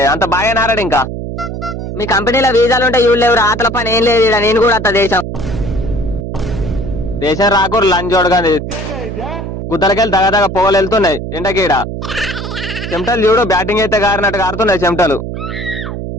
అంత బాగా నారాడు. ఇంకా మీ కంపెనీలో వీసాలు ఉంటే ఇవి లేవు. ఆతల పని ఏం లేదు. నేను కూడా అత్త దేశం రాకూరు లంచోడు కానీ గుద్దలకెళ్ళి దగదగ పొగలు వెళ్తున్నాయి ఎండకీడ. చెమటలు చూడు బ్యాటింగ్ అయితే గారినట్టు గారుతున్నాయి చెమటలు.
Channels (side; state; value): right; noise; hum, 6 dB below the sound